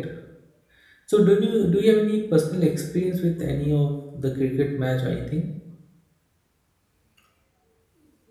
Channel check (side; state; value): both; identical; correlation 1.00